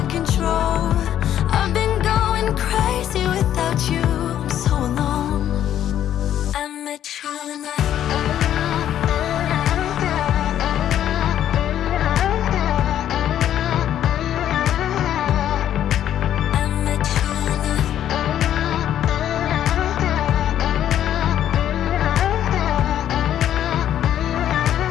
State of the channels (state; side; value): quieter; right; 10.9 dB